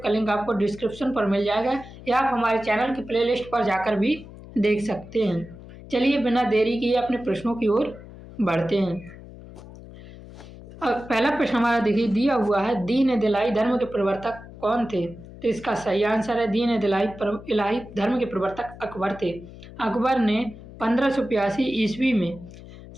का लिंक आपको डिस्क्रिप्शन पर मिल जाएगा, या आप हमारे चैनल की प्लेलिस्ट पर जाकर भी देख सकते हैं। चलिए बिना देरी किए अपने प्रश्नों की ओर बढ़ते हैं। पहला प्रश्न हमारा देखिए दिया हुआ है, दीन दिलाई धर्म के प्रवर्तक कौन थे? तो इसका सही आंसर है दीन इलाही धर्म के प्रवर्तक अकबर थे। अकबर ने 1582 ईस्वी में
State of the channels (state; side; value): noise; left; hum, 17 dB below the sound